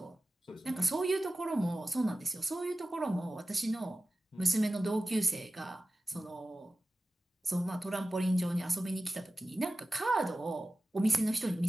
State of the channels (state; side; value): normal; both; correlation 0.95